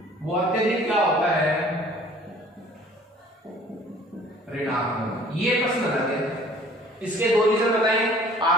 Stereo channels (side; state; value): both; normal; correlation 0.52